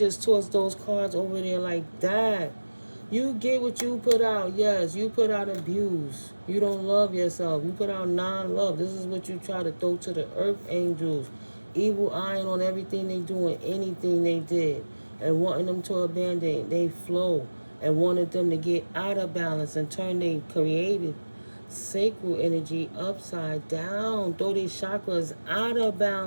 tossed those cards over there like that. You get what you put out. Yes, you put out abuse. You don't love yourself. You put out non-love. This is what you try to throw to the earth angels. Evil eyeing on everything they do and anything they did. And wanting them to abandon they flow. And wanted them to get out of balance and turn their creative sacral energy upside down. Throw these chakras out of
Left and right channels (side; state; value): both; inverted; correlation -1.00